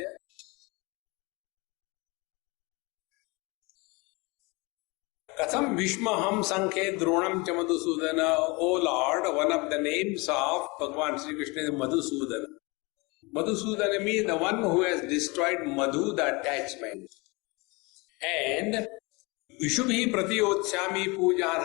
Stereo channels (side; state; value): right; quieter; 26.6 dB